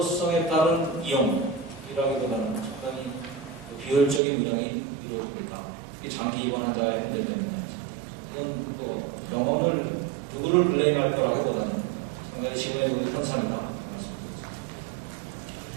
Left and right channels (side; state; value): left; drops out; at 4.2 s